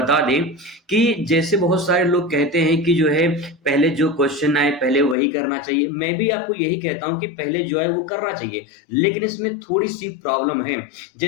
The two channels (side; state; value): right; drops out; at 5.2 s